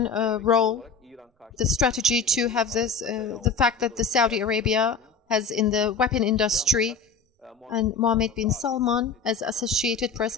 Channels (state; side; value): quieter; right; 4.8 dB